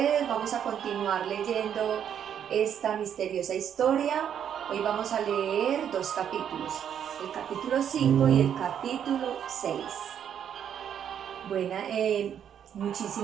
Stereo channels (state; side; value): quieter; left; 8.9 dB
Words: Vamos a continuar leyendo esta misteriosa historia. Hoy vamos a leer dos capítulos, el capítulo 5 y el capítulo 6. Bueno,